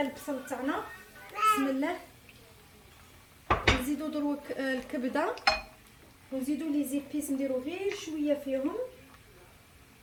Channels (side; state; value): both; identical; correlation 1.00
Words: تاعنا. بسم الله. نزيدو دروك الكبده ونزيدو لي زيبيس، نديرو غير شويه فيهم.